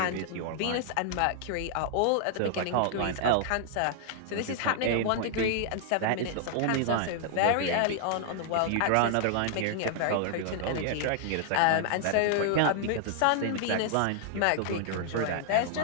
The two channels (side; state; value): both; different; correlation -0.01